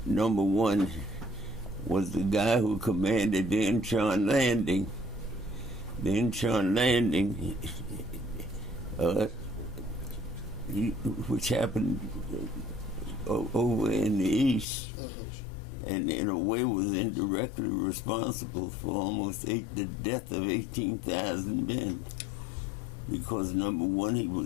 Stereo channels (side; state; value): right; drops out; at 14.7 s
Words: number one, was the guy who commanded the Incheon landing. The Incheon landing, which happened over in the east, and in a way was indirectly responsible for almost the death of 18,000 men. Because number one, he